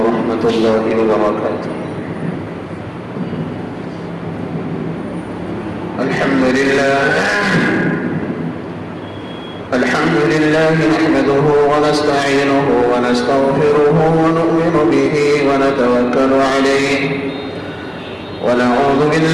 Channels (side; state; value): both; identical; correlation 1.00